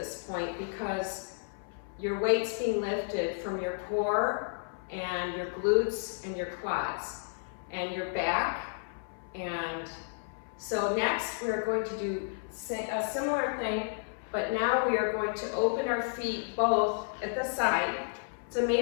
point because your weight's being lifted from your core and your glutes and your quads and your back. And so next we're going to do a similar thing, but now we are going to open our feet both at the side. It's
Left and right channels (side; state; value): right; silent; 56 dB below the other